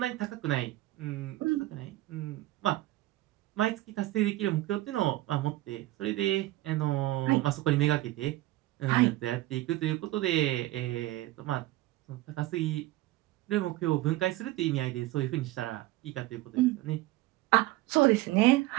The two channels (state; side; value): quieter; left; 17.3 dB